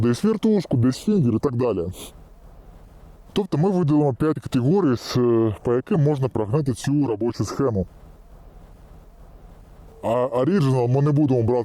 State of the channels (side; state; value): both; identical; correlation 1.00